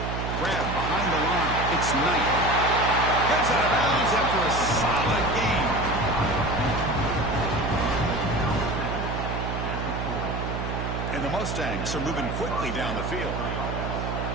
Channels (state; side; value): noise; right; hum, 3 dB below the sound